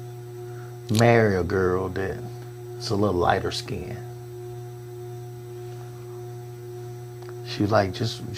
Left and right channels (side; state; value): both; identical; correlation 1.00